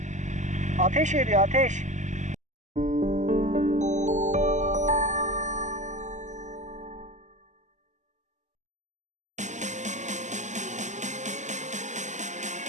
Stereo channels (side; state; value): left; late; 0.34 ms